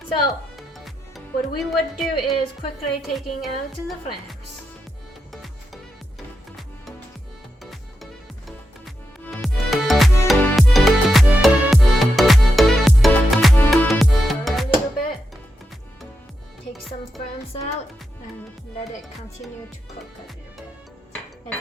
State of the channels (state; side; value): normal; both; correlation 0.86